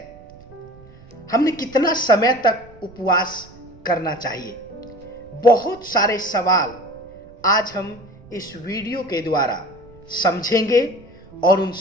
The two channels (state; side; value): noise; right; rumble, 23 dB below the sound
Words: हमने कितना समय तक उपवास करना चाहिए? बहुत सारे सवाल आज हम इस वीडियो के द्वारा समझेंगे और उन